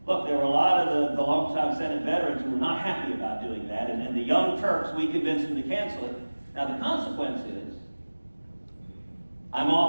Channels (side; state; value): both; inverted; correlation -1.00